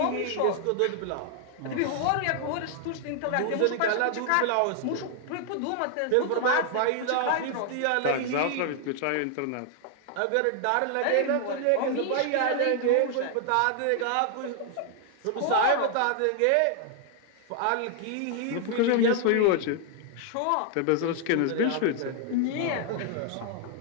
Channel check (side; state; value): both; different; correlation 0.00